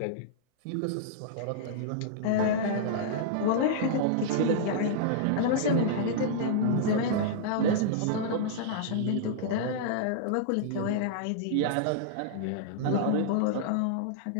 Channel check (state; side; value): different; both; correlation -0.02